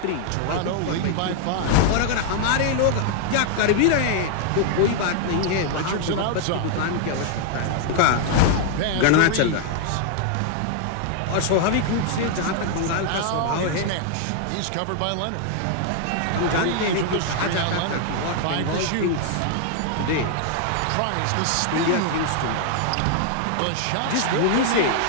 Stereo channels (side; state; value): both; different; correlation 0.00